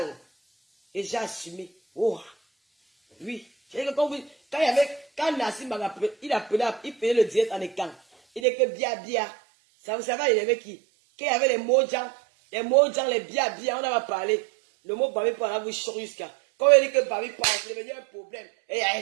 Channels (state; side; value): drops out; left; at 8.4 s